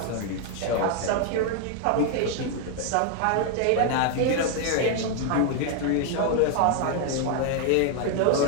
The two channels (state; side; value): different; both; correlation 0.00